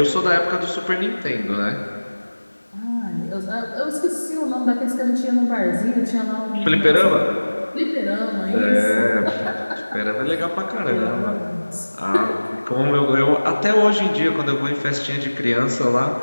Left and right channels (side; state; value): both; inverted; correlation -1.00